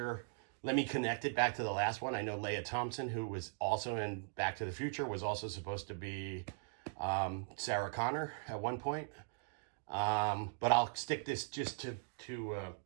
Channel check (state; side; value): silent; left; digital silence